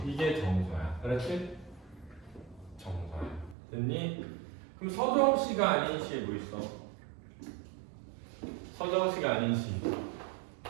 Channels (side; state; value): left; drops out; at 3.6 s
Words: 이게 정서야. 그렇지? 정서야. 됐니? 그럼 서정시가 아닌 시에 뭐 있어? 서정시가 아닌 시.